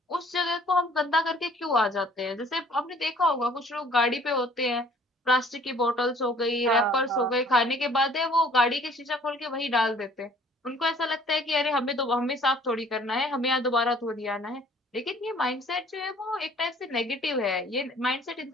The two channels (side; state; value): both; normal; correlation 0.56